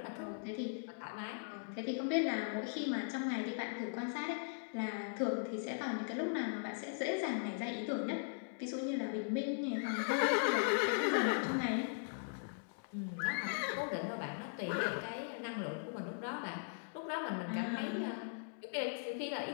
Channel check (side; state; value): right; silent; digital silence